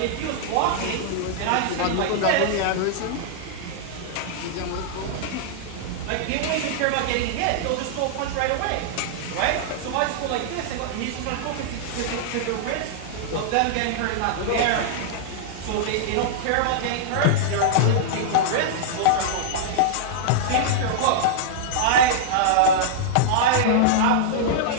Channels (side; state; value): both; different; correlation -0.01